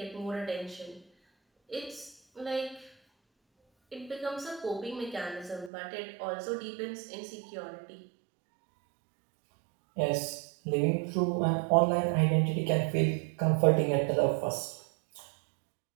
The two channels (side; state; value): left; drops out; at 5.7 s